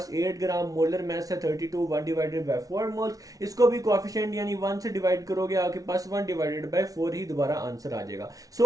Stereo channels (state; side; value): late; left; 0.18 ms